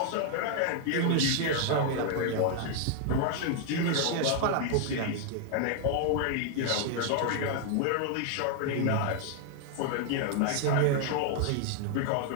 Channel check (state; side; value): different; both; correlation 0.00